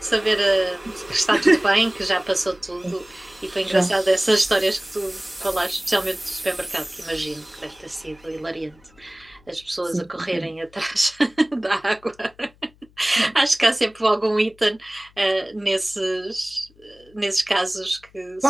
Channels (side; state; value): left; noise; hum, 29 dB below the sound